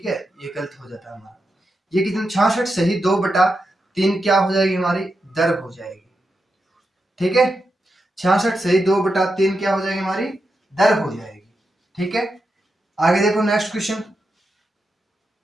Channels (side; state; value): both; normal; correlation 0.87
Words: है, ये गलत हो जाता है हमारा। ये कितने 66 सही 2/3 क्या हो जाएगी हमारी दर हो जाएगी। ठीक है, 66 सही 2/3 क्या हो जाएगी हमारी दर हो जाएगी। ठीक है, आगे देखो नेक्स्ट क्वेश्चन।